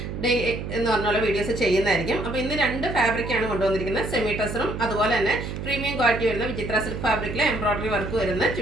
ഡെയിലി എന്ന് പറഞ്ഞുള്ള വീഡിയോസ് ചെയ്യുന്നതായിരിക്കും. അപ്പോൾ ഇന്ന് രണ്ട് ഫാബ്രിക്കാണ് കൊണ്ടുവന്നിരിക്കുന്നത്. സെമി ടസറും അതുപോലെ തന്നെ പ്രീമിയം ക്വാളിറ്റി വരുന്ന വിചിത്ര സിൽക്ക് ഫാബ്രിക്കിലെ എംബ്രോയ്ഡറി വർക്ക് വരുന്ന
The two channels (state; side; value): noise; right; hum, 6 dB below the sound